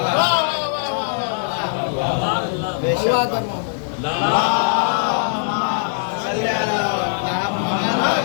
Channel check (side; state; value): right; silent; 65 dB below the other